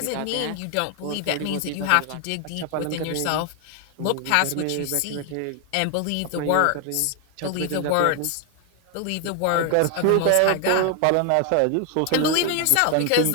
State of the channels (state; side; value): different; both; correlation 0.00